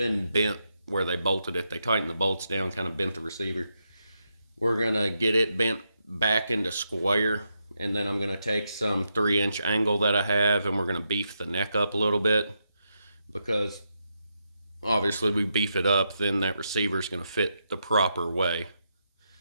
bent where they bolted it. They tightened the bolts down, kind of bent the receiver. We're going to get it bent back into square, and then I'm going to take some 3-inch angle that I have, and we're going to beef the neck up a little bit, because obviously we beef it up, then that receiver is going to fit the proper way.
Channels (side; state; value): both; inverted; correlation -0.83